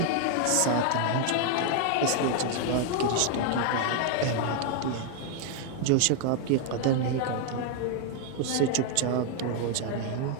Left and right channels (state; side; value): different; both; correlation 0.00